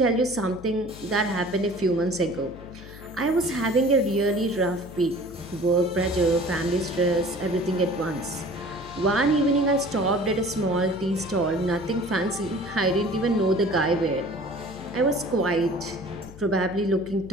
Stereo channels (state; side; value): noise; left; hum, 17 dB below the sound